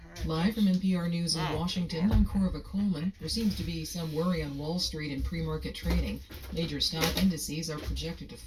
All right. Live from NPR News in Washington, I'm Corva Coleman. There seems to be some worry on Wall Street in pre-market trading. Major stock indices are projected to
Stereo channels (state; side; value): identical; both; correlation 1.00